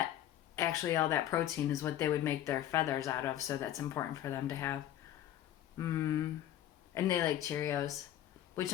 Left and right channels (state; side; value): quieter; right; 11.9 dB